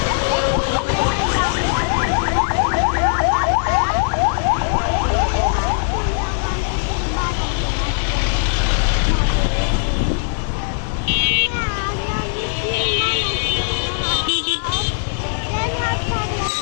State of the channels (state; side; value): silent; right; 66 dB below the other